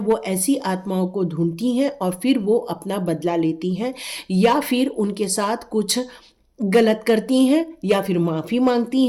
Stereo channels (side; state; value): both; identical; correlation 1.00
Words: ऐसी आत्माओं को ढूंढती हैं और फिर वो अपना बदला लेती हैं, या फिर उनके साथ कुछ गलत करती हैं, या फिर माफ़ी मांगती